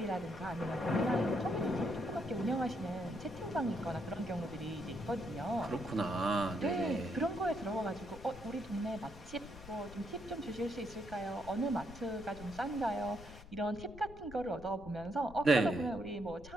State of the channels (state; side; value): noise; left; rumble, 16 dB below the sound